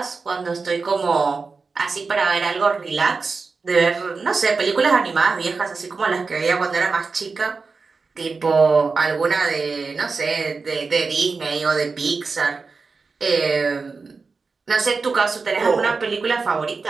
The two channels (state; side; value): quieter; left; 4.4 dB